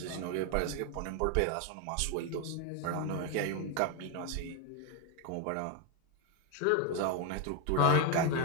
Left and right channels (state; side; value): different; both; correlation 0.01